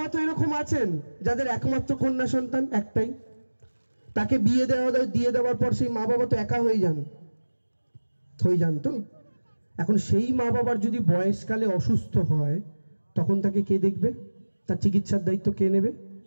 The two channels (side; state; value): both; inverted; correlation -1.00